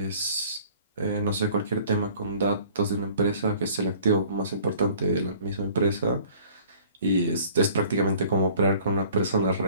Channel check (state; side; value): inverted; both; correlation -0.52